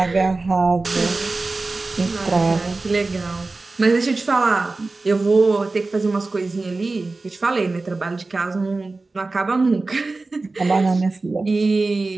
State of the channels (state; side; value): quieter; left; 3.5 dB